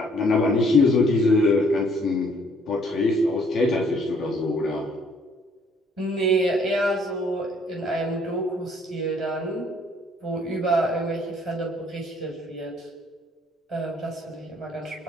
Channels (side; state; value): both; normal; correlation 0.62